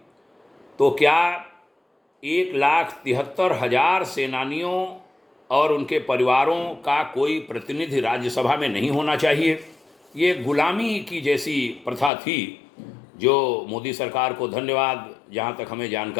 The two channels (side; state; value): right; drops out; at 12.1 s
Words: तो क्या 1,73,000 सेनानियों और उनके परिवारों का कोई प्रतिनिधि राज्यसभा में नहीं होना चाहिए? ये गुलामी की जैसी प्रथा थी, जो मोदी सरकार को धन्यवाद, जहाँ तक हमें